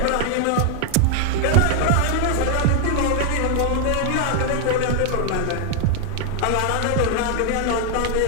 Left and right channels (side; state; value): both; different; correlation 0.00